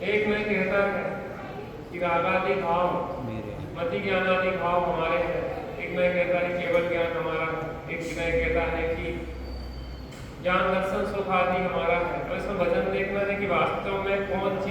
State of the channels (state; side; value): identical; both; correlation 1.00